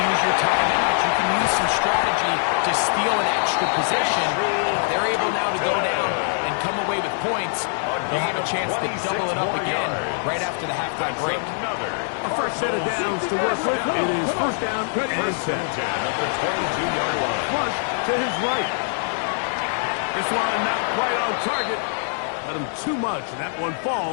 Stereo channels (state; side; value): silent; right; digital silence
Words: your timeout. You can use some strategy to steal an extra possession. If they're able now to go down and come away with points, they'll have a chance to double it up again right after the halftime break. A first set of downs to work with. It is 1st down and 10. At the 22-yard line. Flush to his right. This one not quite on target. Let him too much, and that one